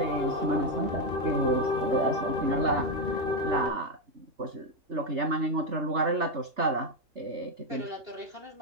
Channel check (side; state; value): left; late; 3.3 ms